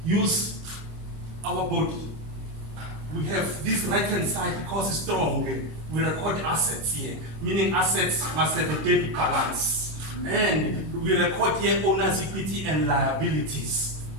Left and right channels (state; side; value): late; left; 26 ms